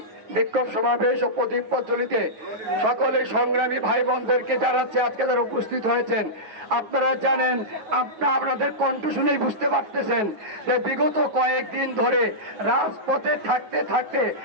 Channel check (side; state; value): left; late; 9.4 ms